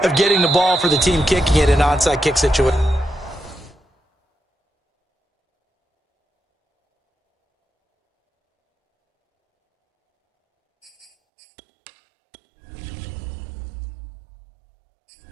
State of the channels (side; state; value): left; drops out; at 11.1 s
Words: of getting the ball for the team kicking it in an onside kick situation.